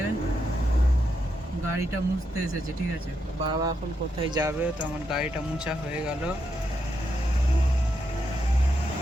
গাড়িটা মুছতে এসেছি, ঠিক আছে। বাবা এখন কোথায় যাবে, তো আমার গাড়িটা মুছা হয়ে গেল।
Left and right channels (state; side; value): normal; both; correlation 0.82